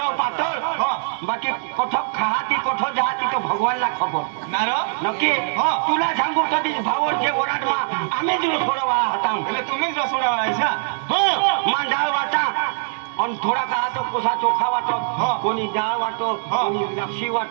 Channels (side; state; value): left; silent; digital silence